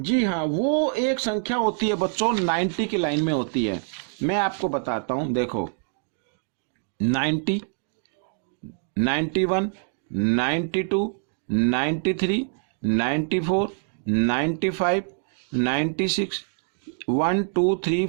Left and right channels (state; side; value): silent; left; 62 dB below the other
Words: हाँ, वो एक संख्या होती है बच्चों, 90 की लाइन में होती है। मैं आपको बताता हूं, देखो 90, 91, 92, 93, 94, 95, 96, 1 2 3